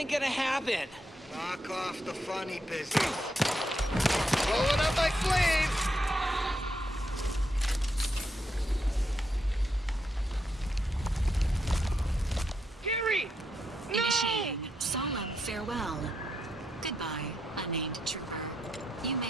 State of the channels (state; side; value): normal; both; correlation 0.81